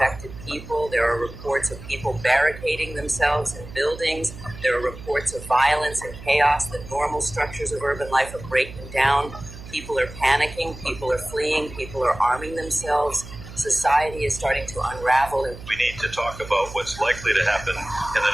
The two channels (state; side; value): noise; right; hum, 14 dB below the sound